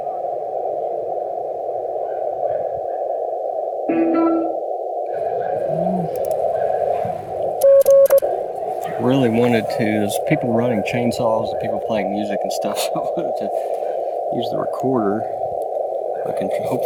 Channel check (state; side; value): identical; both; correlation 1.00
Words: Really wanted to, there's people running chainsaws and people playing music and stuff, so I wanted to use the recorder. I can